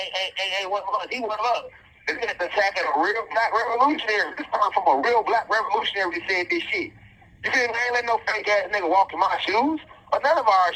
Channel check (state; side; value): identical; both; correlation 1.00